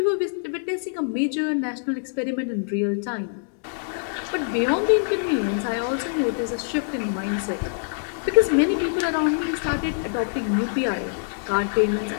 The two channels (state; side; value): silent; right; digital silence